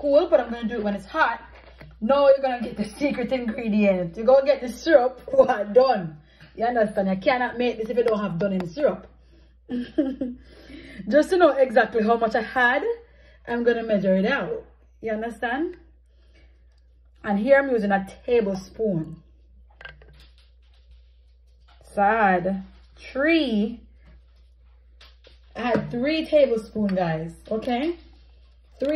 but I'm going to do it when it's hot. Now you're going to get the secret ingredient. You're going to get the syrup done. You understand? You cannot make this if you don't have done in syrup. Just to know exactly how much I had, I'm going to measure it out. You understand? And here I'm using a tablespoon. So I had 3 tablespoons, guys. Okay?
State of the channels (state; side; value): identical; both; correlation 1.00